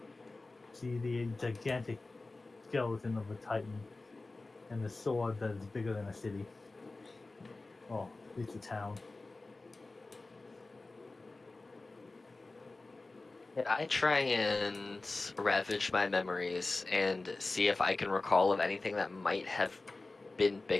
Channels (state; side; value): quieter; right; 3.3 dB